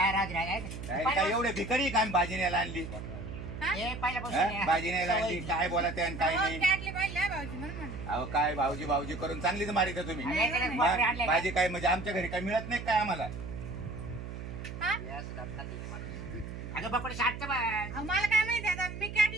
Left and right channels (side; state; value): right; noise; hum, 9 dB below the sound